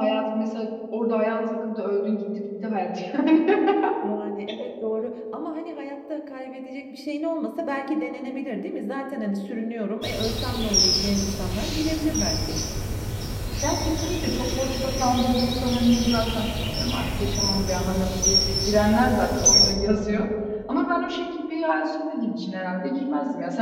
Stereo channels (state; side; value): identical; both; correlation 1.00